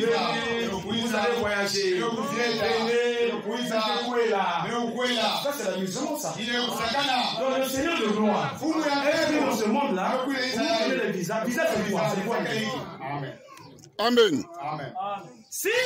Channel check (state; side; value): identical; both; correlation 1.00